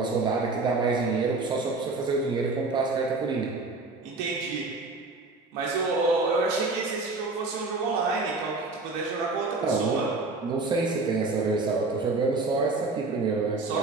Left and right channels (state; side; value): quieter; left; 3.5 dB